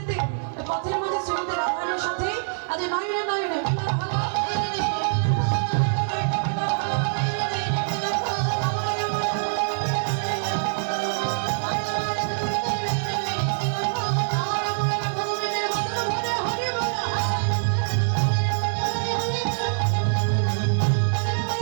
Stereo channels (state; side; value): silent; left; 58 dB below the other